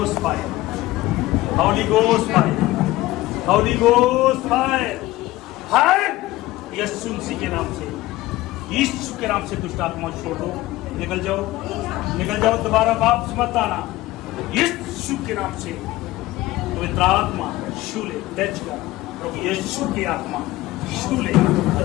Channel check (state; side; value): quieter; right; 17.6 dB